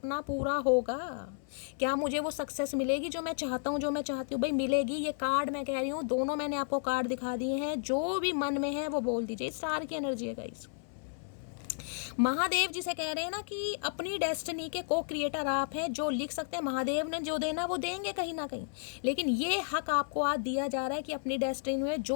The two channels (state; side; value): silent; right; 56 dB below the other